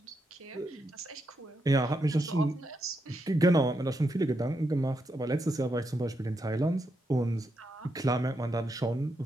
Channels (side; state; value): both; normal; correlation 0.83